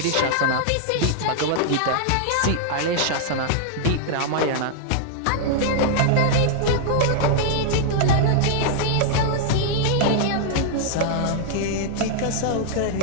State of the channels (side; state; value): both; different; correlation -0.01